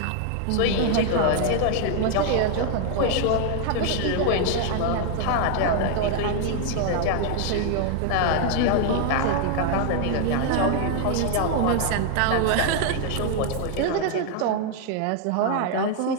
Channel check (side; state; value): both; different; correlation 0.00